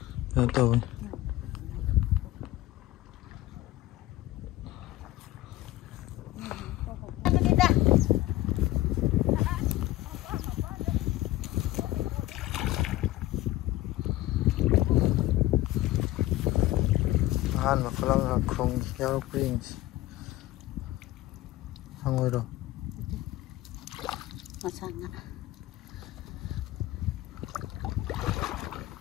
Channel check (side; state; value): right; quieter; 16.3 dB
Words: nggak tahu han mà có là không giao prince không ngồi đâu mà sang ạ